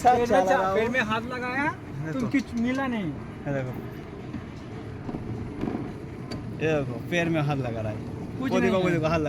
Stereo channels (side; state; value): both; identical; correlation 1.00